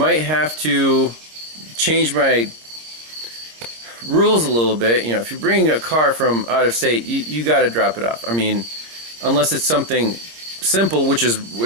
have to change my rules a little bit. If you're bringing a car from out of state, you got to drop it off. I mean, unless it's something simple, which it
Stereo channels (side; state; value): left; late; 26 ms